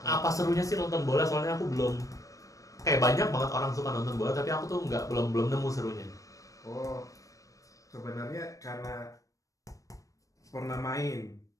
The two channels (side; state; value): right; late; 0.16 ms